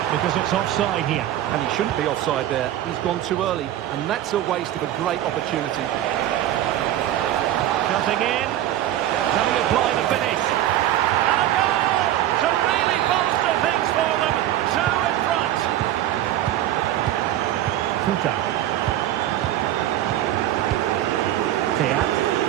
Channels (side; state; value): left; quieter; 12.8 dB